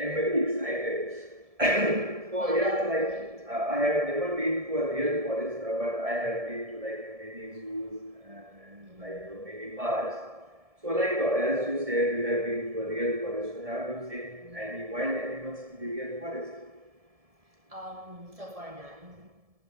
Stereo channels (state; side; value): late; left; 1.7 ms